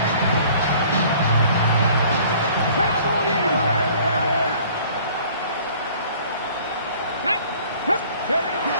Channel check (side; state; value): both; inverted; correlation -0.52